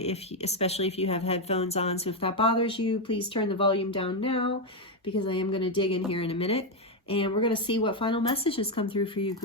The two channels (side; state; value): both; normal; correlation 0.05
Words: if you have headphones on. So if that bothers you, please turn the volume down now, because I am going to dig in here in a minute. And we're going to see what final messages come through for you,